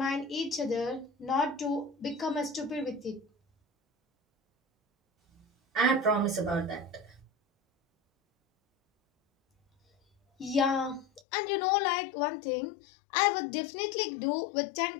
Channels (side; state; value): right; drops out; at 11.2 s